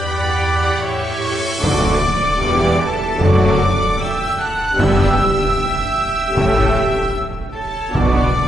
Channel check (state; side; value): normal; both; correlation 0.82